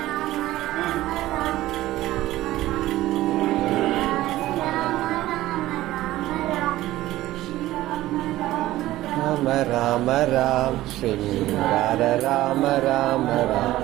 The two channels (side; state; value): left; quieter; 15.9 dB